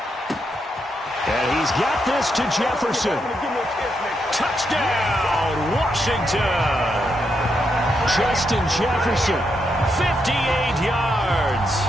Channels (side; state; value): both; normal; correlation 0.81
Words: And he's got this to Jefferson. Touchdown, Washington. Justin Jefferson, 58 yards.